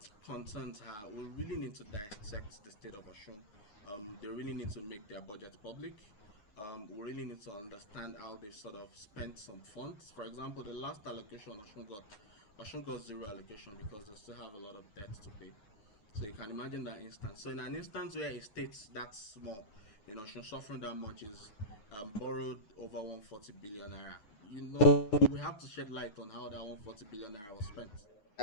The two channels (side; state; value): right; late; 9.6 ms